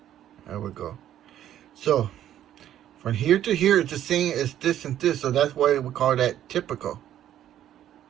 There we go. So from here to here, it's the same as this and this. So that's why we call that typical.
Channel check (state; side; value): quieter; left; 11.5 dB